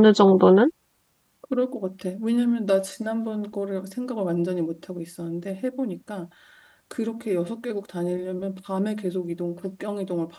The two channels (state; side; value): identical; both; correlation 1.00